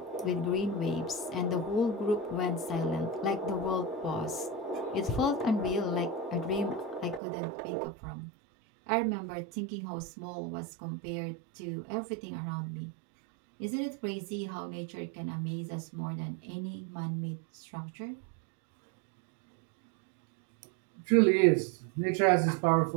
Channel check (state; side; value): drops out; left; at 7.2 s